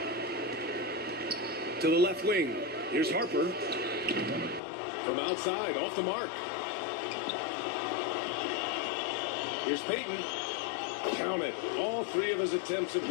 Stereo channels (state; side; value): drops out; right; at 4.6 s